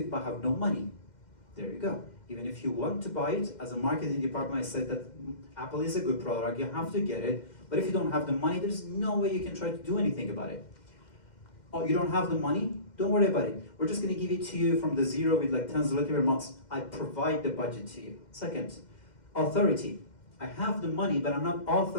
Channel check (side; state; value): right; late; 2.1 ms